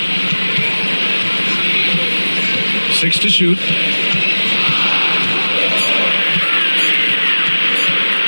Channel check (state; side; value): inverted; both; correlation -1.00